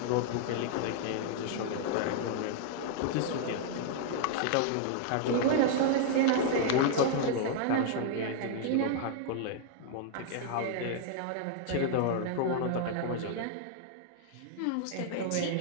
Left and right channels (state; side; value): different; both; correlation -0.01